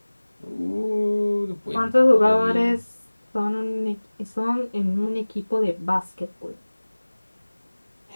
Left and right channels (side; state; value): both; inverted; correlation -1.00